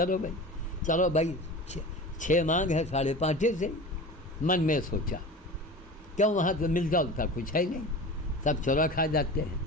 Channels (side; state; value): both; normal; correlation 0.34